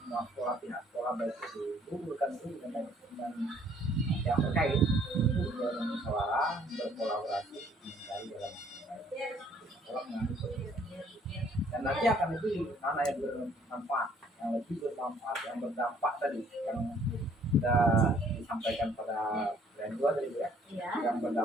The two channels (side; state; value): both; normal; correlation 0.61